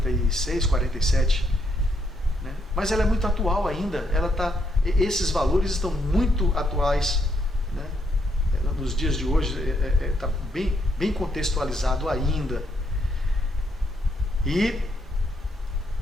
47, né? Mas ela é muito atual ainda. Esses valores estão muito atuais, né? Nos dias de hoje está bem contextualizado ainda. E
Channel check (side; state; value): both; normal; correlation 0.75